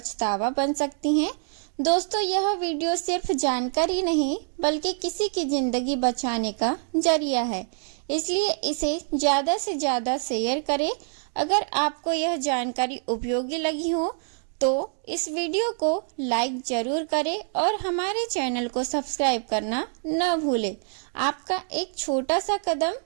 बन सकती है। दोस्तों, यह वीडियो सिर्फ जानकारी नहीं बल्कि किसी की ज़िंदगी बचाने का जरिया है, इसलिए इसे ज़्यादा से ज़्यादा शेयर करें। अगर आपको यह जानकारी उपयोगी लगी हो तो इस वीडियो को लाइक ज़रूर करें और हमारे चैनल को सब्सक्राइब करना न भूलें। आपका एक छोटा सा कदम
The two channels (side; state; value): left; silent; 61 dB below the other